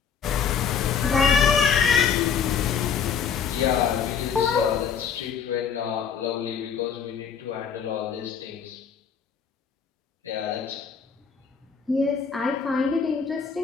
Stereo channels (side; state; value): right; quieter; 6.8 dB